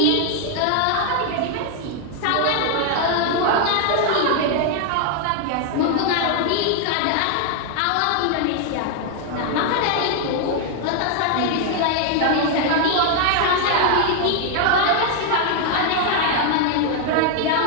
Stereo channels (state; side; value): different; both; correlation 0.00